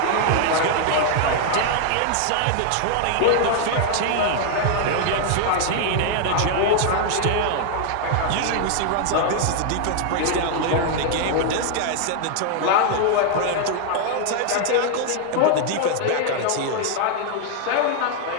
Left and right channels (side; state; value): both; different; correlation 0.00